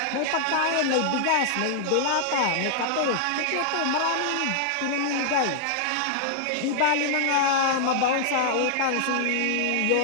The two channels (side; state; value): both; different; correlation -0.01